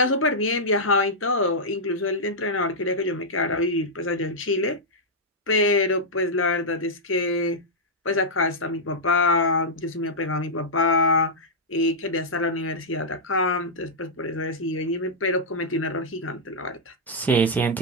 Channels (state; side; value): normal; both; correlation -0.08